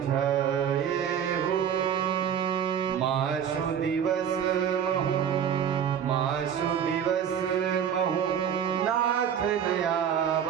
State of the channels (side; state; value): left; quieter; 8.5 dB